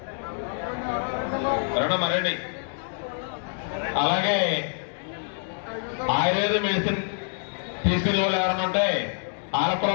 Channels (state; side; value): silent; right; 61 dB below the other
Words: 60 మరండి. అలాగే ఆయుర్వేద మెడిసిన్ తీసుకునే వాళ్ళు ఎవరైనా ఉంటే వాళ్ళకు కూడా